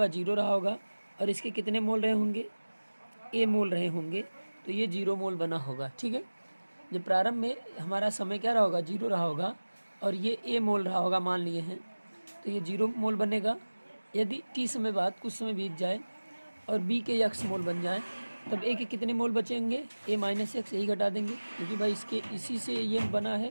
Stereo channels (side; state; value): both; inverted; correlation -1.00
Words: 0 रहा होगा और इसके कितने मोल रहे होंगे, ए मोल रहे होंगे, तो ये 0 मोल बना होगा, ठीक है। जब प्रारंभ में हमारा समय क्या रहा होगा 0 रहा होगा और ये ए मोल रहा होगा मान लिए हैं, तो ये 0 मोल बनेगा। यदि टी समय बाद कुछ समय बीत जाए और बी के यक्स मोल बन जाए, तब ए के कितने मोल बचेंगे, ए माइनस एक्स, यही घटा देंगे क्योंकि भाई इसके इसी से ये बना है,